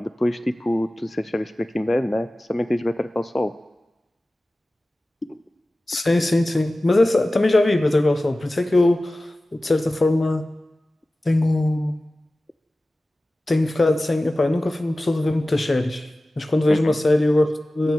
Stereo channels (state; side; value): normal; both; correlation 0.96